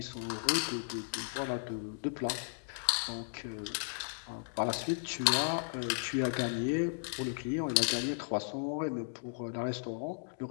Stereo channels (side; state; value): right; silent; digital silence